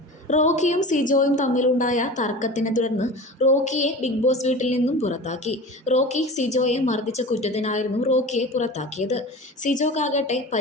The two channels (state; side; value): normal; both; correlation 0.34